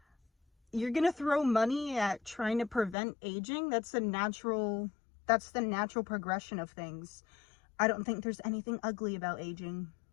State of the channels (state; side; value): drops out; right; at 3.0 s